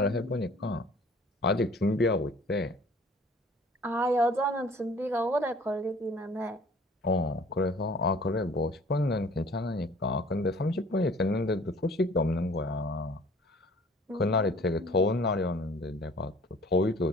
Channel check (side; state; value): both; normal; correlation 0.51